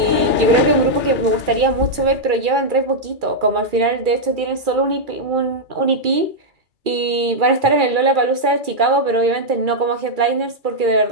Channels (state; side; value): late; left; 2.3 ms